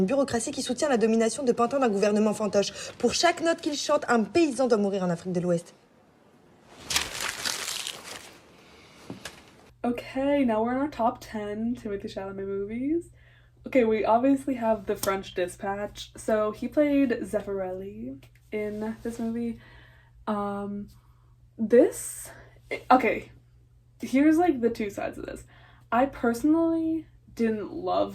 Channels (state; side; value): identical; both; correlation 1.00